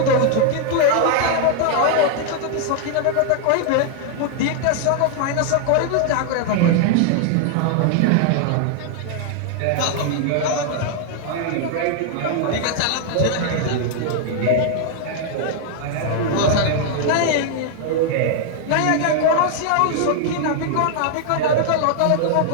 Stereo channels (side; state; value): both; different; correlation 0.00